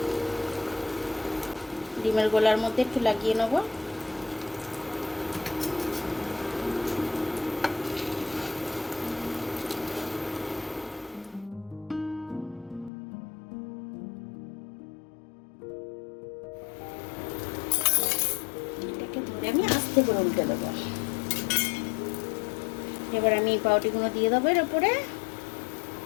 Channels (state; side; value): drops out; right; at 12.9 s